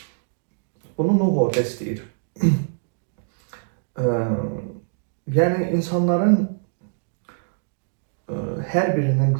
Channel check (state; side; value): silent; left; digital silence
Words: Bunu Nuh orada istəyir. Yəni insanların hər birinin